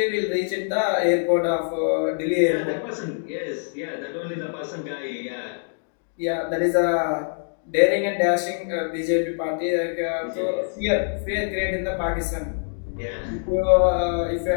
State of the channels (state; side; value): silent; right; 62 dB below the other